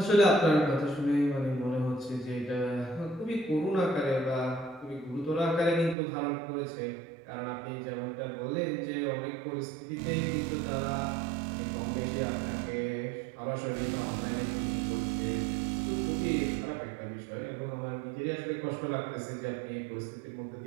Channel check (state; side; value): drops out; left; at 6.0 s